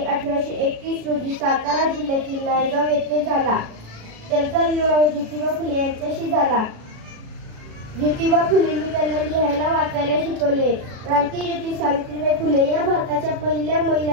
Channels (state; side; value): late; left; 36 ms